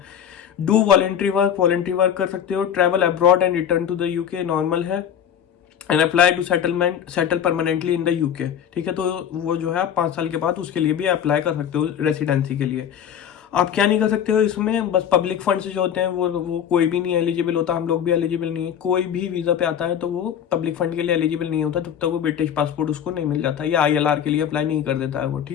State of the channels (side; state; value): right; quieter; 8.9 dB